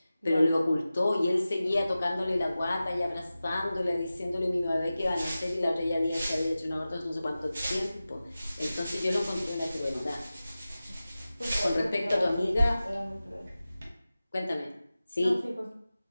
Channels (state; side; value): inverted; both; correlation -0.96